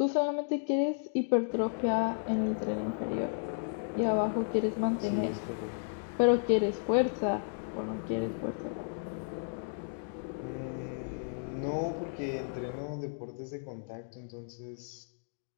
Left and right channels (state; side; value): silent; right; digital silence